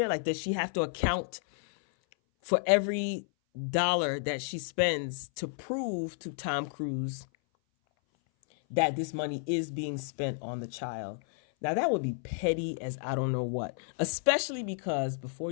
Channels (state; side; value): silent; right; 57 dB below the other